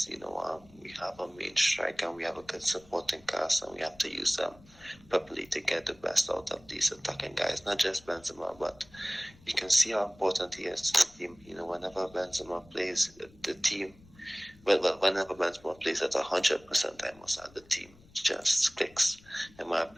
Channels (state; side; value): noise; left; rumble, 26 dB below the sound